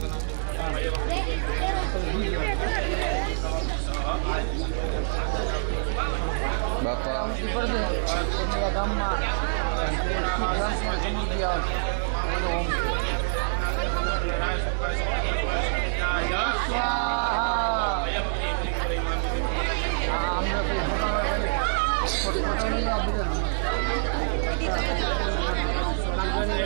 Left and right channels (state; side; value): silent; left; digital silence